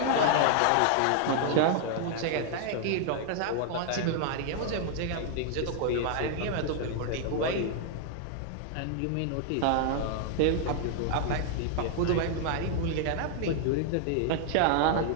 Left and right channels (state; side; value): different; both; correlation 0.00